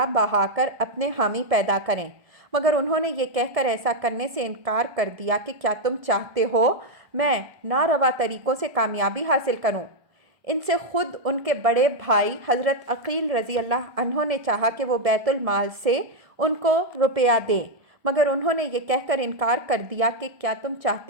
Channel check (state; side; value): late; left; 1.7 ms